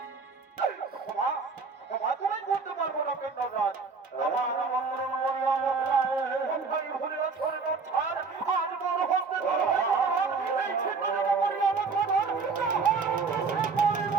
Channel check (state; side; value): quieter; left; 4.8 dB